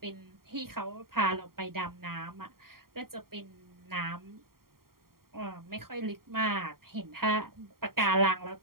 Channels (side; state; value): left; late; 0.93 ms